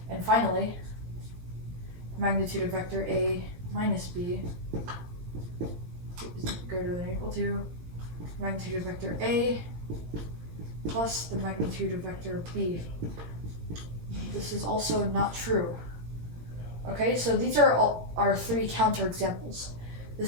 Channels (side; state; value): left; late; 17 ms